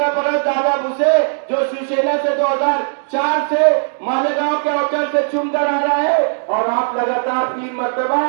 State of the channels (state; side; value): silent; left; digital silence